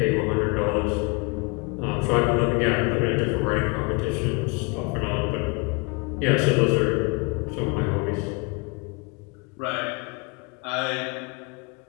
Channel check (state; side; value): quieter; right; 29.7 dB